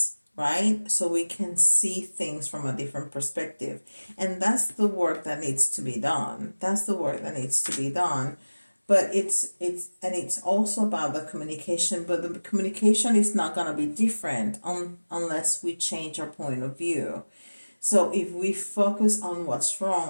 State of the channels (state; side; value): inverted; both; correlation -1.00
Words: right? So we can see things from a different perspective. And that's the work that needs to be done. That's the work that needs to be done. But it's also about the communication, but the communication is not going to be different unless we change our point of view. So if we focus on what's